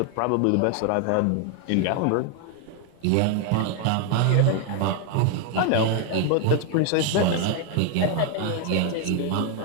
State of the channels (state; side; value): different; both; correlation 0.01